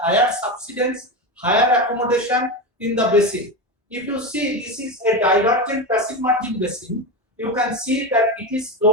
subsidence, higher accommodation in the basin. If you see this is a divergent passive margin basin, you can see that it is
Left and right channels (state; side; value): normal; both; correlation 0.17